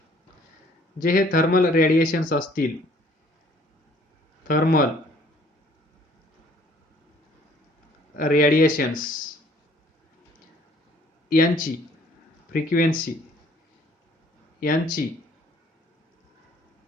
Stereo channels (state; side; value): normal; both; correlation 0.58